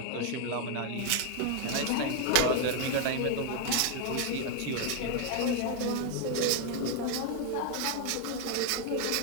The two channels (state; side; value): different; both; correlation 0.00